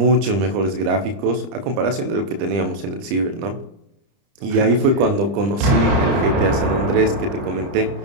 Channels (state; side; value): late; left; 30 ms